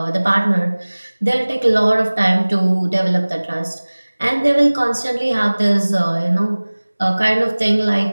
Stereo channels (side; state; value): both; inverted; correlation -1.00